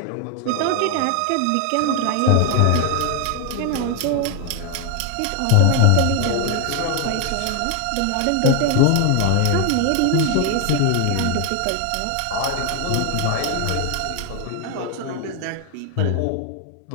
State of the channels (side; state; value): both; different; correlation 0.00